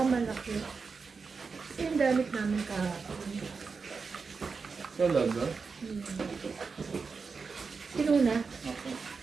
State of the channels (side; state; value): left; quieter; 4.9 dB